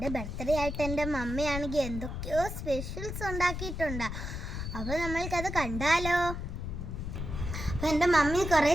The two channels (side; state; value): left; noise; rumble, 5 dB below the sound